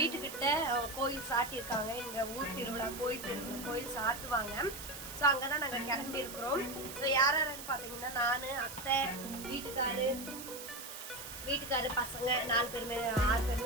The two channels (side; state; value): right; noise; hiss, 11 dB below the sound